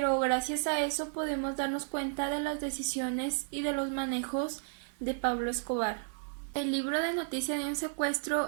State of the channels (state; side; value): silent; left; 55 dB below the other